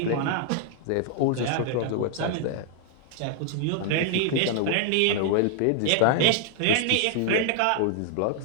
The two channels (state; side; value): different; both; correlation 0.00